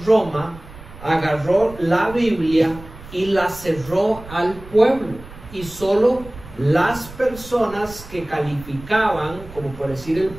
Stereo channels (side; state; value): right; noise; rumble, 17 dB below the sound